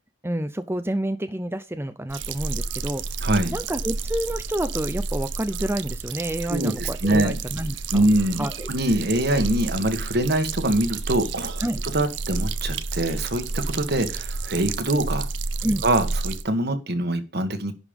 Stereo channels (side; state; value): both; normal; correlation 0.58